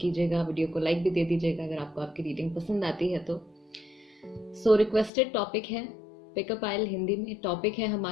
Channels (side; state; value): right; drops out; at 5.1 s